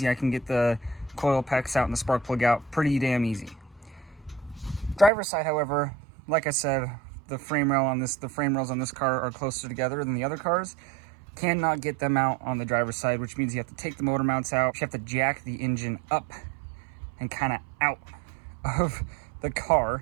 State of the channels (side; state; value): left; drops out; at 5.1 s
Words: I can get the coil packs out and the spark plug out pretty damn easy. Driver's side, however, like I said, the frame rails on this car are closer together than the other cars. Cannot get them out on the driver's side, which means you have to take the motor mounts out. You have to jack the engine up and kind of out of the